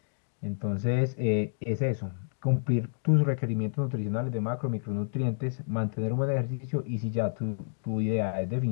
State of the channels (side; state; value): right; silent; digital silence